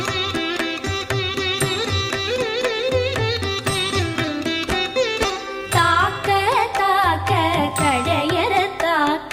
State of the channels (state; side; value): identical; both; correlation 1.00